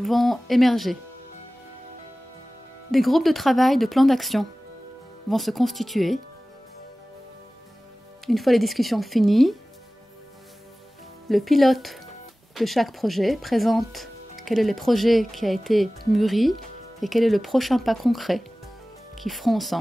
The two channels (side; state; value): both; normal; correlation 0.97